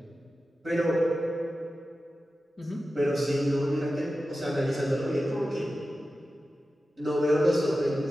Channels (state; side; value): normal; both; correlation 0.94